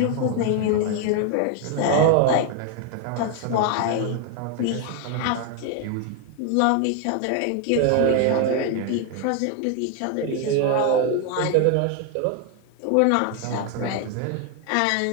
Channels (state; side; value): different; both; correlation 0.00